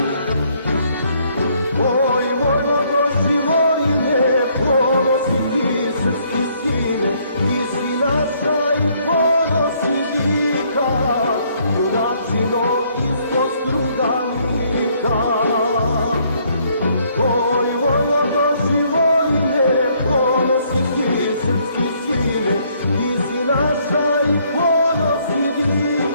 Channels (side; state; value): both; inverted; correlation -0.67